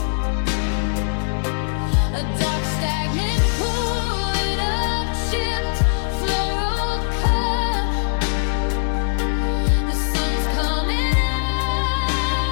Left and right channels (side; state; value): right; silent; 65 dB below the other